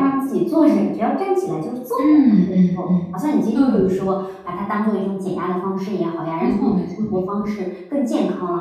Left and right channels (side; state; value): both; identical; correlation 1.00